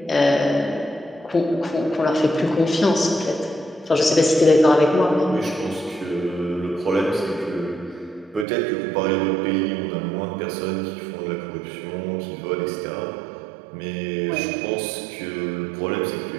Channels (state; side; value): drops out; left; at 8.5 s